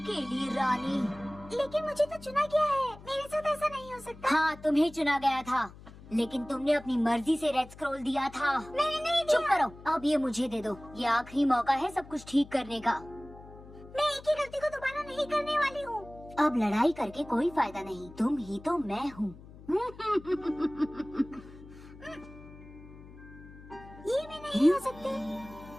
रानी। लेकिन मुझे तो चुना गया है, मेरे साथ ऐसा नहीं हो सकता। हाँ, तुम्हें चुना गया था, लेकिन तुमने अपनी मर्जी से रेड स्क्रॉल दिया था। मैंने नहीं दिया। चुप करो, अब ये मुझे दे दो। ये आखिरी मौका है सब कुछ ठीक करने का। मैं एक ही गलती को दोबारा नहीं करने वाली हूँ। अब लड़ाई करके कोई फायदा नहीं, तुम ही तो मैं हूँ। ये भी नहीं हो सकते।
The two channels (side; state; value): left; noise; hum, 19 dB below the sound